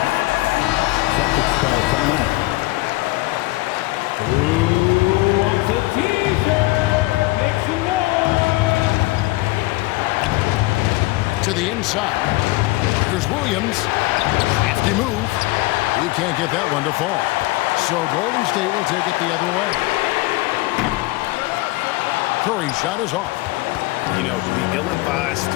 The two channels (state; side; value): quieter; right; 21.0 dB